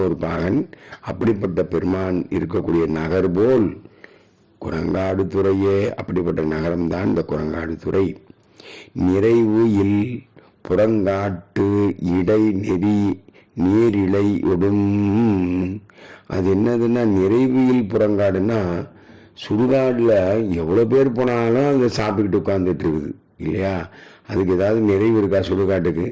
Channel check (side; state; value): both; identical; correlation 1.00